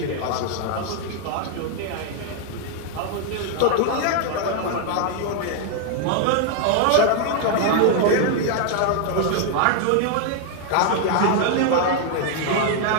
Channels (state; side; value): different; both; correlation 0.00